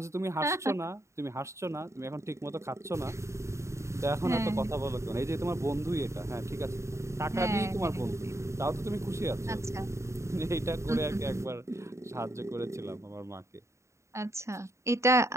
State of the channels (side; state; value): left; late; 0.14 ms